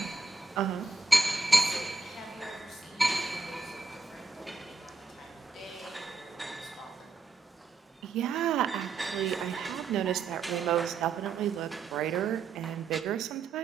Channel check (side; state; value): left; quieter; 4.1 dB